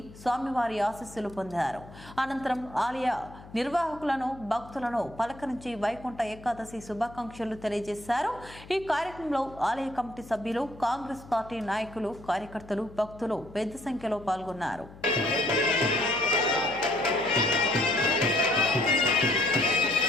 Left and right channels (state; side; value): noise; left; hum, 19 dB below the sound